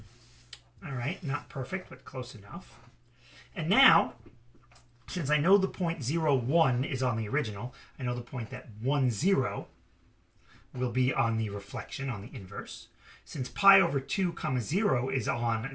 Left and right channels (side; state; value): both; identical; correlation 1.00